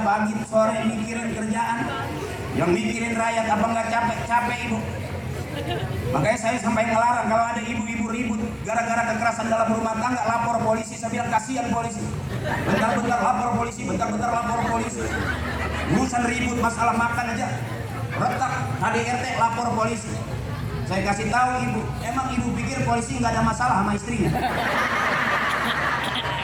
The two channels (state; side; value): identical; both; correlation 1.00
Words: sore mikirin kerjaan, yang mikirin rakyat, apa nggak capek ibu? Makanya saya sampai ngelarang kalau ada ibu-ibu ribut gara-gara kekerasan dalam rumah tangga, lapor polisi. Saya bilang kasihan polisi, bentar-bentar lapor polisi, bentar-bentar lapor polisi. Urusan ribut masalah makan aja retak, KDRT lapor polisi. Saya kasih tahu ibu, emang ibu pikir polisi nggak ada masalah sama istrinya?